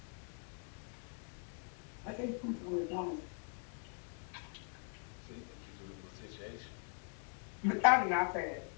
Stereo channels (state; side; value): silent; right; 50 dB below the other